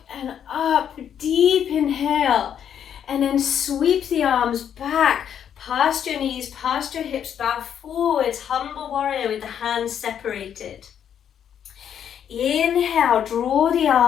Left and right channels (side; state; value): right; quieter; 8.9 dB